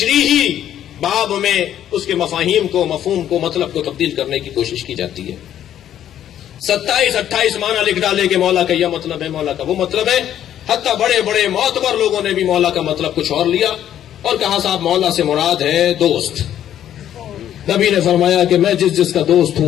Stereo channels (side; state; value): right; quieter; 10.9 dB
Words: باب میں اس کے مفاہیم کو، مفہوم کو، مطلب کو تبدیل کرنے کی کوشش کی جاتی ہے۔ 27-28 معنی لکھ ڈالے کہ مولا کا یہ مطلب ہے، مولا کا وہ مطلب ہے، حتیٰ بڑے بڑے معتبر لوگوں نے بھی مولا کا مطلب کچھ اور لیا اور کہا صاحب مولا سے مراد ہے دوست۔ نبی نے فرمایا کہ میں جس کا دوست